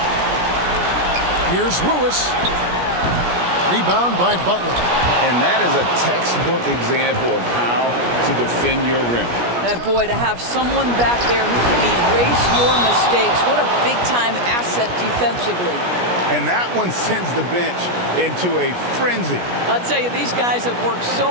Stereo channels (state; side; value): late; left; 17 ms